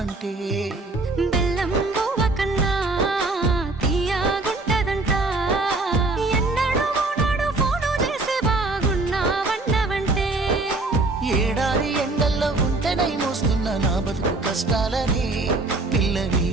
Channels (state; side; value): quieter; left; 3.2 dB